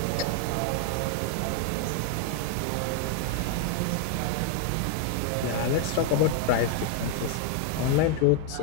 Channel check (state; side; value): different; both; correlation 0.00